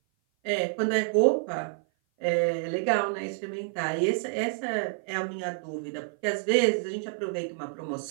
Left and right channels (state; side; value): silent; left; 56 dB below the other